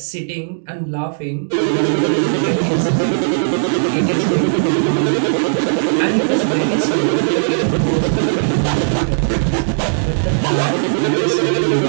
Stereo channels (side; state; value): left; silent; digital silence